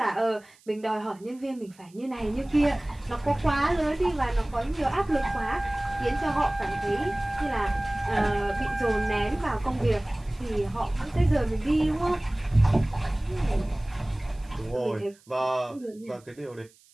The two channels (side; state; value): right; noise; hiss, 29 dB below the sound